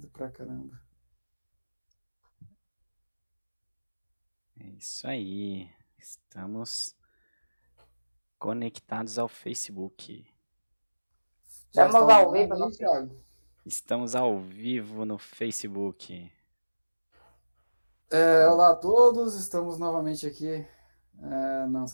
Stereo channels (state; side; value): inverted; both; correlation -1.00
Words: pra caramba. É isso aí. Estamos conectados ao Facebook. Já Estamos está ao online vivo aí, no Thiago? Estamos ao vivo no Facebook. Olá a todos, estamos novamente aqui no